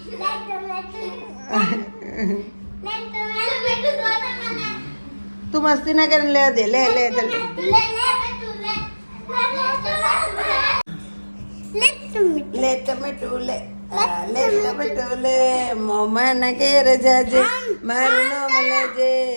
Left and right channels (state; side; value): inverted; both; correlation -1.00